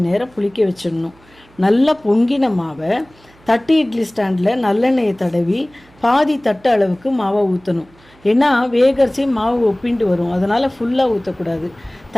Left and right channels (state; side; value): noise; right; hum, 29 dB below the sound